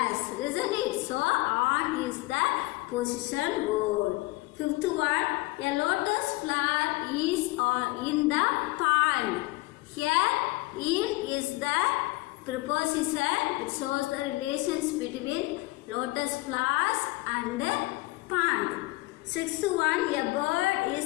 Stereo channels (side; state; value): right; quieter; 22.3 dB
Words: Isn't it? So, on is the position word. Fifth one, a lotus flower is in the pond. Here, in is the preposition. It shows the relations between lotus flowers and the pond. Sixth one, a bird